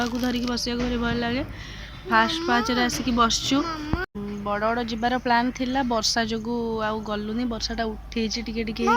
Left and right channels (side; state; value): both; identical; correlation 1.00